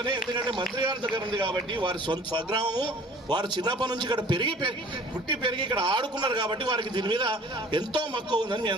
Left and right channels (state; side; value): normal; both; correlation 0.49